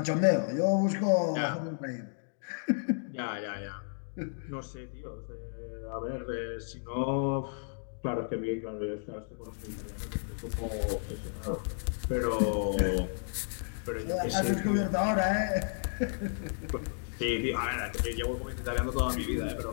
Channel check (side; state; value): right; silent; digital silence